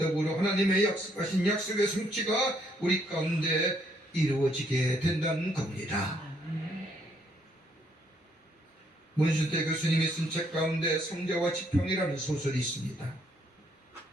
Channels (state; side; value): normal; both; correlation 0.69